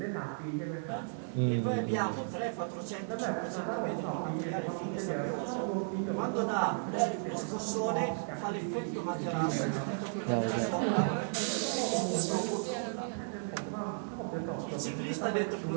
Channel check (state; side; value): silent; left; 55 dB below the other